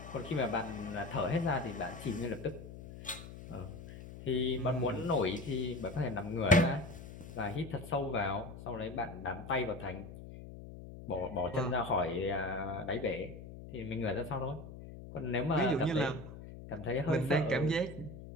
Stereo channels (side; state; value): left; noise; hum, 13 dB below the sound